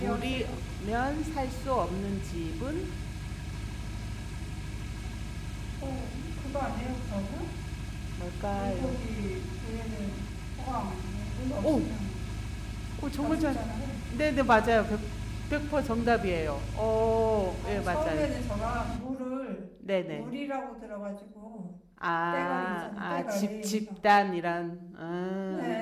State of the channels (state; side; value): identical; both; correlation 1.00